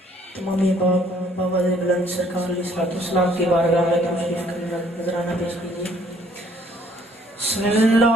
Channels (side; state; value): both; normal; correlation 0.62